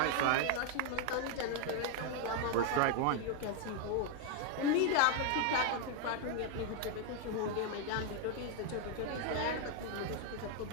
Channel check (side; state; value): both; different; correlation 0.00